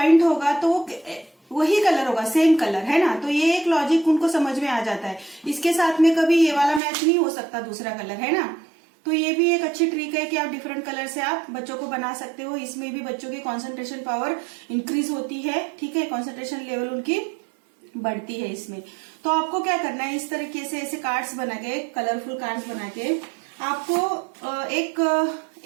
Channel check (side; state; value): left; drops out; at 6.8 s